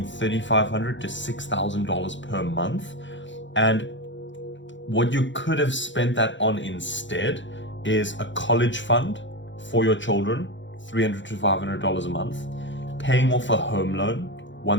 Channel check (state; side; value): late; right; 0.54 ms